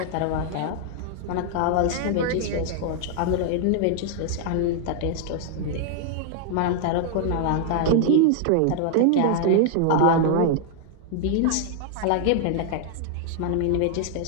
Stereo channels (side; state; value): both; different; correlation 0.00